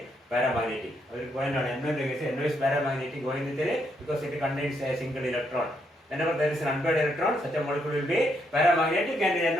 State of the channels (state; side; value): normal; both; correlation 0.76